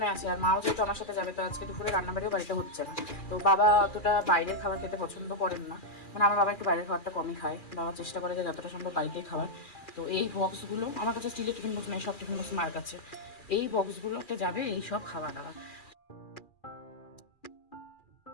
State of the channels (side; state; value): right; late; 2.4 ms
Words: আছে, আর মাও যেহেতু আমার সাথে যাবে, তো আজকে দুপুরে রান্নাবাড়িও বাড়িতে হচ্ছে না। তো বাবা অতটা বাইরের খাবার খেতে পছন্দ করেন না, মানে আমার বাবা একটু বাইরের খাবারটা কমই খায়। বাবা চেষ্টা করে যে যতটা সম্ভব বাড়িতেই খাবার। তো এই বক্সগুলো আমার কাছে, স্টিলের টিফিন বক্স নেই, সব টিফিন বক্স মার কাছে। এই বক্সগুলোতে যাবে এই সব খাওয়া দাওয়া।